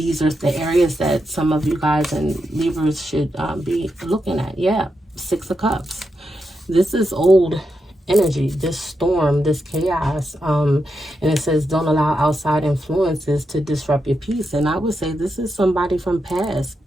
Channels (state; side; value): normal; both; correlation 0.85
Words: are the areas that some of you guys and Libras should be looking at. Yeah, Six of Cups. This is old energy, this storm, this chaos. And it says, don't allow outside influences to disrupt your peace. And I would say this is somebody from past,